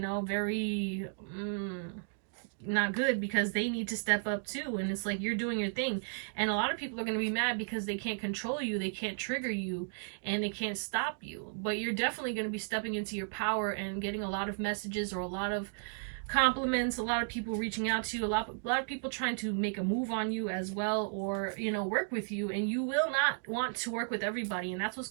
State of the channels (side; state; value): left; silent; digital silence